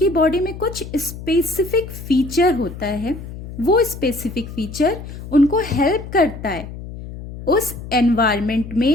बॉडी में कुछ स्पेसिफिक फीचर होता है, वो स्पेसिफिक फीचर उनको हेल्प करता है उस एनवायरनमेंट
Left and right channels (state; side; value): noise; left; hum, 12 dB below the sound